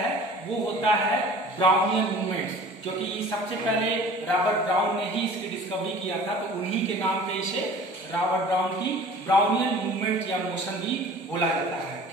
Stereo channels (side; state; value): both; normal; correlation 0.45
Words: वो होता है ब्राउनियन मूवमेंट, क्योंकि सबसे पहले रॉबर्ट ब्राउन ने ही इसकी डिस्कवरी किया था, तो उन्हीं के नाम पे इसे रॉबर्ट ब्राउन की ब्राउनियन मूवमेंट या मोशन भी बोला जाता है।